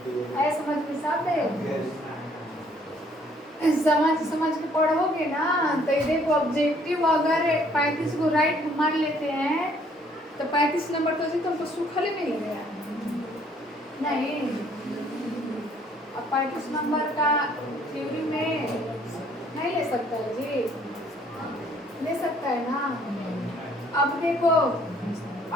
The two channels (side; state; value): both; normal; correlation 0.62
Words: ऐ समझ में साफ है, समझ के पढ़ोगे ना तो ये देखो ऑब्जेक्टिव अगर 35 को राइट मान लेते हैं तो 35 नंबर तो जी तुमको सूखल मिल गया नहीं। अब 35 नंबर का थ्योरी में नहीं ले सकता है जी, ले सकता है ना। अब देखो अब